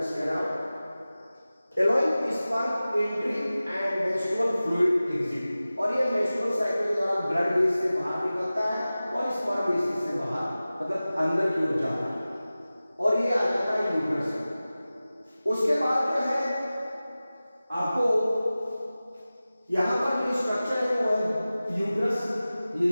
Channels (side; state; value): both; inverted; correlation -0.97